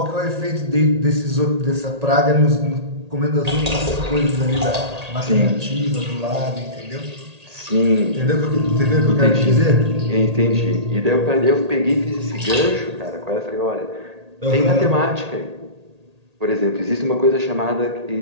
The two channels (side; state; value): left; late; 1.8 ms